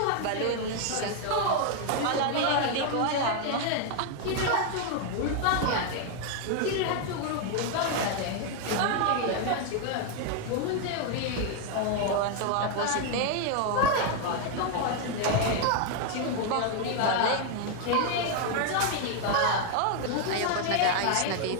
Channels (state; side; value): different; both; correlation 0.00